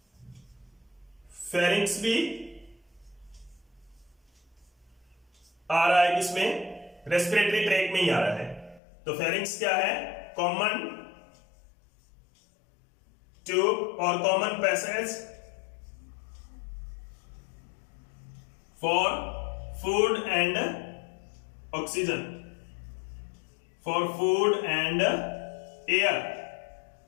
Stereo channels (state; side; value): drops out; right; at 8.8 s